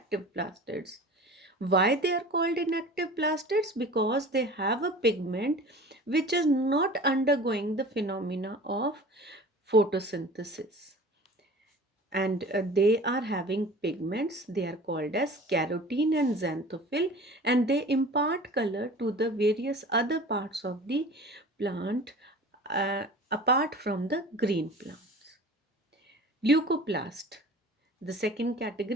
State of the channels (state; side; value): normal; both; correlation 0.41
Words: plastids. Why they are called inactive plastids? Because they have a pigment which is not undergoing the phenomena of photosynthesis, and they are having pigments. They are called as carotene and xanthophyll, and they impart color to the various other parts of the plant apart from the green plants. Leucoplast, the second